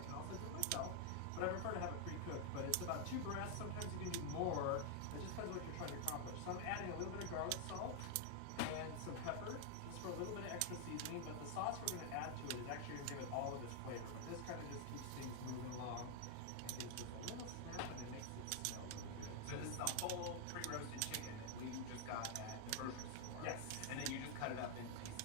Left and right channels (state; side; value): different; both; correlation 0.00